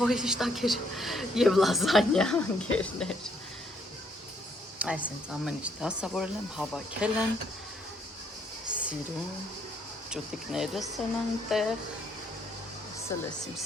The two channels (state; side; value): normal; both; correlation 0.69